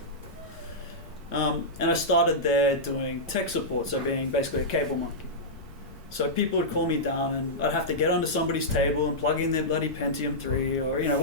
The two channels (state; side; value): normal; both; correlation -0.11